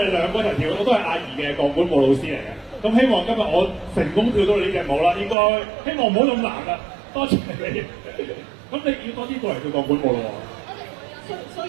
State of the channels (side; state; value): left; drops out; at 5.4 s